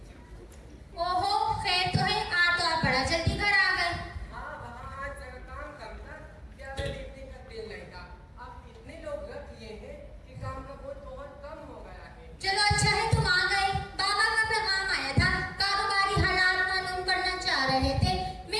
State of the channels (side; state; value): both; identical; correlation 1.00